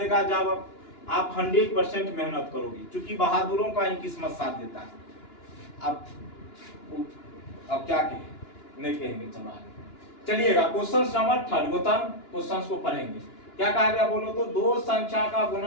जब आप 100% मेहनत करोगे, क्योंकि बहादुरों का ही किस्मत साथ देता है। अब क्या कहें, नहीं कहेंगे, चलो आगे चलिएगा। क्वेश्चन नंबर 3 गौतम क्वेश्चन को पढ़ेंगे। क्या कहा गया बोलो तो? दो संख्या का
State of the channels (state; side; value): late; right; 2.9 ms